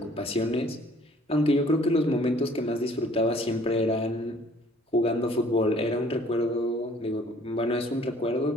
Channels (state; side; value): normal; both; correlation 0.57